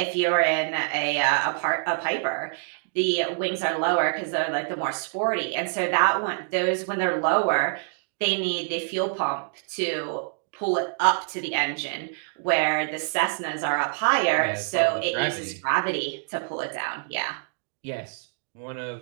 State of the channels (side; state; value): left; silent; digital silence